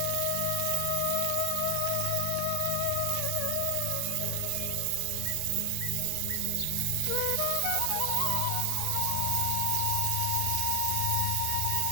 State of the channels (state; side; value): different; both; correlation 0.00